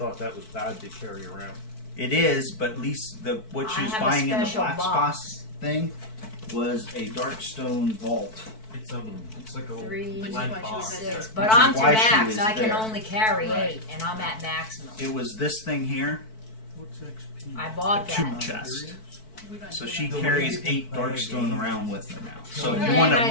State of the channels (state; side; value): late; right; 4.6 ms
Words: that was bad to carry around. It is, but at least what she I was have a buying in the special Black box. Spots thing was a Darkstone vault. It's like a 3, Which is lead why she was box. at 6, the- but Which is I'm to why she max. was I can there. only carry Right. 8, and I'm at maximum. It was this thing here, What's XP? I bought a tool that. chest. We don't So do she that. The carries way you 8 play the Darkstone game. around with her now. So And if you want I